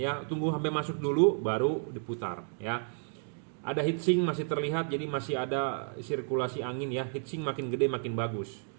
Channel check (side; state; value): left; silent; 57 dB below the other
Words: Tunggu sampai masuk dulu baru diputar, ya. Ada heatsink masih terlihat, jadi masih ada sirkulasi angin, ya. Heatsink makin gede makin bagus.